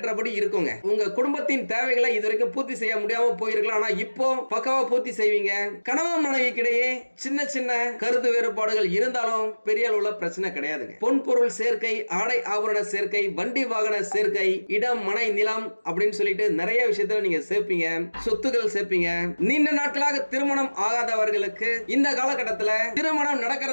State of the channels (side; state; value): both; inverted; correlation -1.00